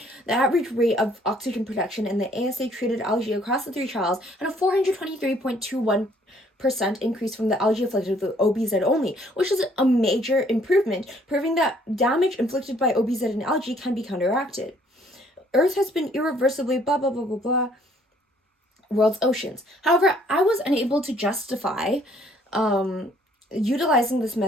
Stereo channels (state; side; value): normal; both; correlation 0.62